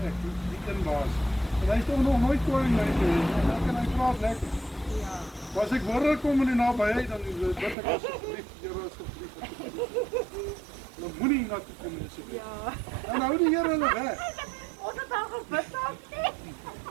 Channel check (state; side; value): drops out; left; at 7.8 s